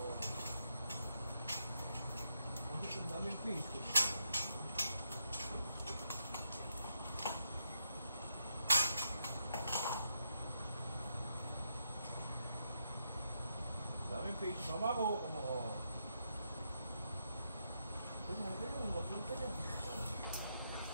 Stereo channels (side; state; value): both; inverted; correlation -0.81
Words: fish. Mama ko.